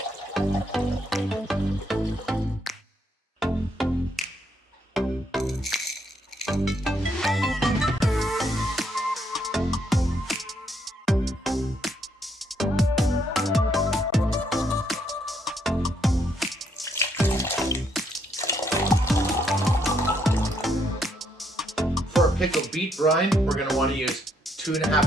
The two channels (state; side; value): normal; both; correlation 0.73